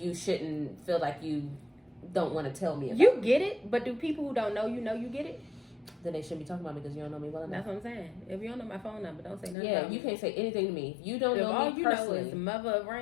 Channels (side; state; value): right; drops out; at 9.6 s